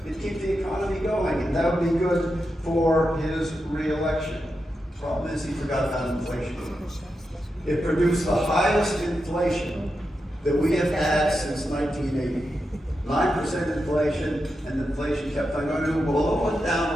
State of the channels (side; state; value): both; normal; correlation 0.87